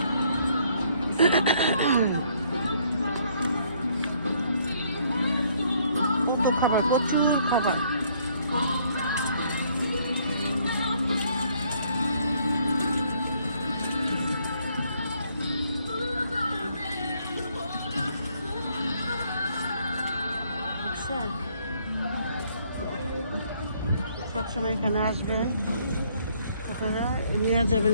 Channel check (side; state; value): both; inverted; correlation -0.66